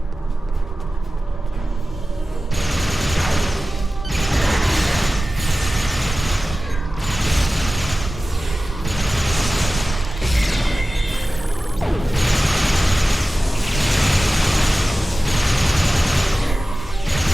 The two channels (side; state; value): both; normal; correlation 0.96